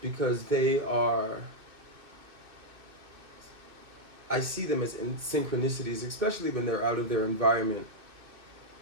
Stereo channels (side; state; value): left; late; 2.6 ms